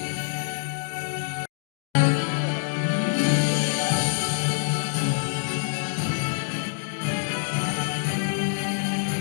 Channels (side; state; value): right; silent; digital silence